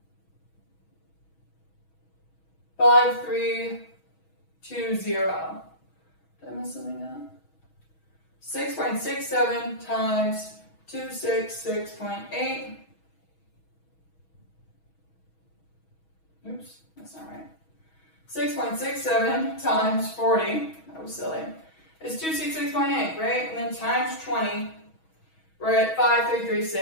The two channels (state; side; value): late; right; 6.2 ms